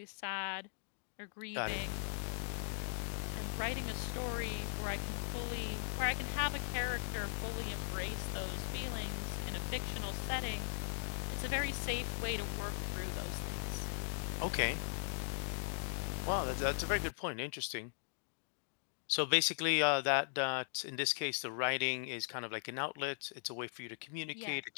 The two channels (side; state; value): right; silent; digital silence